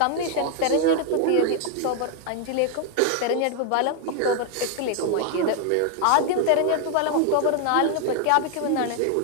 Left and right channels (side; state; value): both; different; correlation 0.00